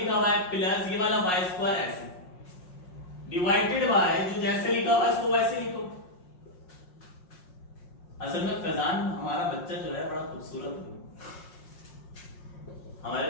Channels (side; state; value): right; late; 5.6 ms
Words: हुआ है प्लस ये वाला y स्क्वायर ऐसे, डिवाइडेड बाय, जो जैसे लिखा हुआ है उसको वैसे लिखो। असल में फैजान हमारा बच्चा जो है बड़ा खूबसूरत है, हमारे